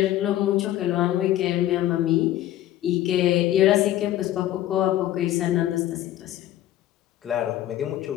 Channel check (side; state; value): right; quieter; 13.6 dB